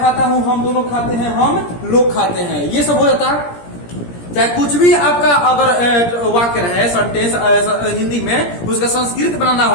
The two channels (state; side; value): late; right; 17 ms